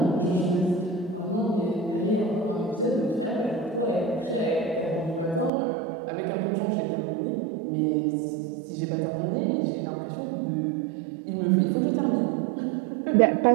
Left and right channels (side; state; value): left; drops out; at 5.5 s